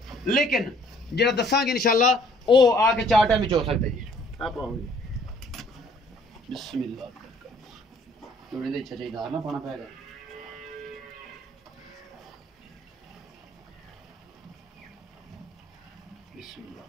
ਲੇਕਿਨ ਜਿਹੜਾ ਦੱਸਾਂਗੇ ਇਨਸ਼ਾਅੱਲਾ ਉਹ ਆ ਕੇ 4 ਟਾਈਮ ਵਿੱਚ ਹੋ ਸਕਦਾ ਜੀ। आप आओगे ਬਿਸਮਿਲ੍ਲਾ ਜੋੜੇ ਦੇ ਇੱਛਾ ਚਾਹੀਦਾ ਨਾ ਪਾਣਾ ਪੈਗਾ। ਬਿਸਮਿਲ੍ਲਾ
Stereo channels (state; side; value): normal; both; correlation 0.60